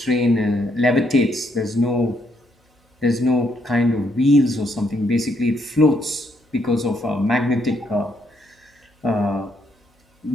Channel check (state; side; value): normal; both; correlation 0.73